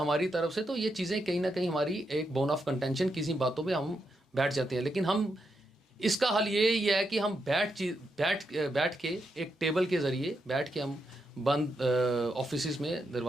तरफ से, तो ये चीज़ें कहीं ना कहीं हमारी एक बोन ऑफ कंटेंशन, किसी बातों पे हम बैठ जाते हैं। लेकिन हम इसका हल ये है कि हम बैठ के एक टेबल के ज़रिए बैठ के हम बंद ऑफिस में,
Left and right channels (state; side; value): normal; both; correlation 0.83